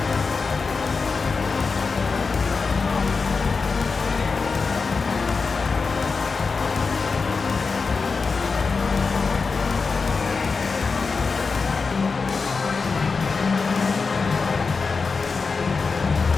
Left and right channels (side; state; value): right; quieter; 4.7 dB